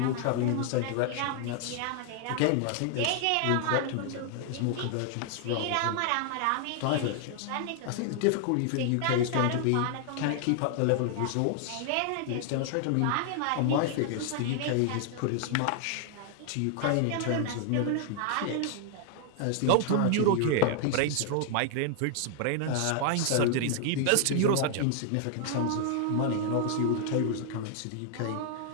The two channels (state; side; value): different; both; correlation 0.00